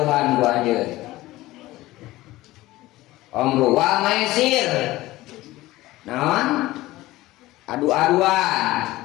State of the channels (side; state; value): right; quieter; 17.7 dB